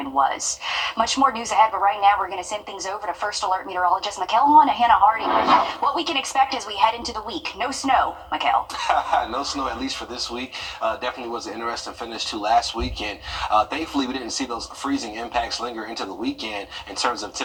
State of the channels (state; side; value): identical; both; correlation 1.00